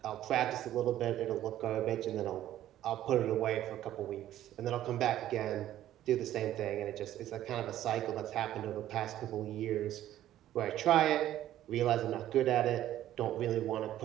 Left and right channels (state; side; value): quieter; left; 12.8 dB